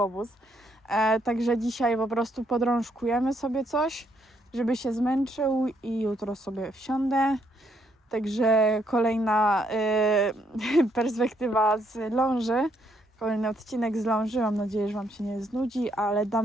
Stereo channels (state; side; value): normal; both; correlation 0.73